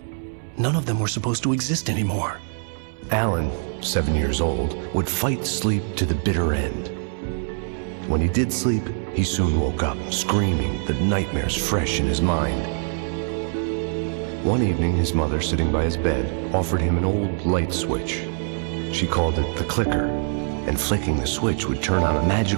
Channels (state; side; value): silent; left; 63 dB below the other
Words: None of them were supposed to exist anymore. Alan, 7 years old, would fight sleep to the bitter end. When he did sleep, he soon woke up, screaming, the nightmares fresh in his mind. One evening, his mother, sitting by his bed, offered him an old light switch. She called it the clicker, and flicking the switch would turn on a